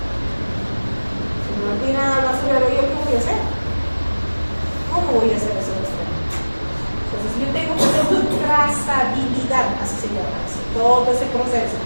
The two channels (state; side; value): inverted; both; correlation -1.00